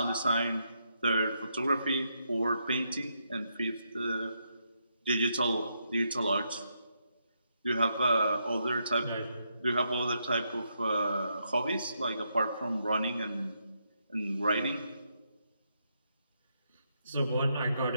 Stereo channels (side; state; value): both; inverted; correlation -0.79